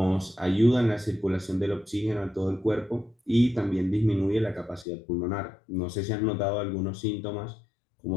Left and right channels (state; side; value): drops out; right; at 4.9 s